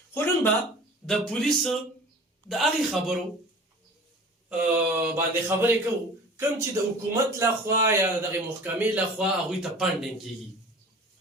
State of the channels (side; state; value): both; normal; correlation 0.42